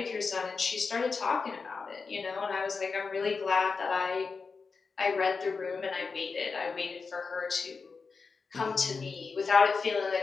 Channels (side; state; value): right; quieter; 4.8 dB